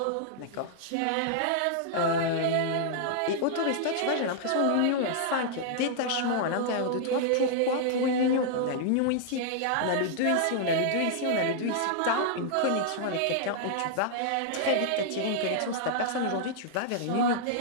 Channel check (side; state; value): both; different; correlation -0.01